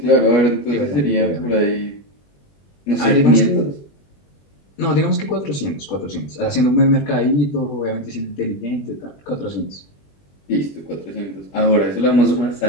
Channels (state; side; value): late; right; 21 ms